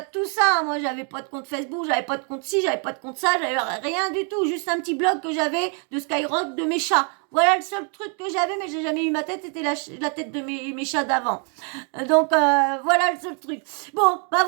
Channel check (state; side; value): quieter; left; 39.3 dB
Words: tout ça. Moi, j'avais pas de compte Facebook, j'avais pas de compte ci, j'avais pas de compte ça, j'avais rien du tout. Juste un petit blog que j'avais de Skyrock de mes chats. Voilà le seul truc que j'avais, mais j'ai jamais eu ma tête, c'était la tête de mes chats d'avant. Donc, voilà le seul truc. Bon, bah